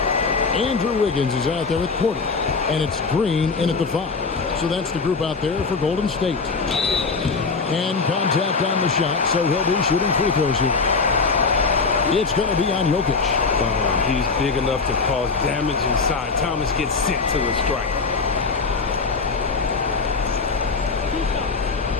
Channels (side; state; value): right; quieter; 4.6 dB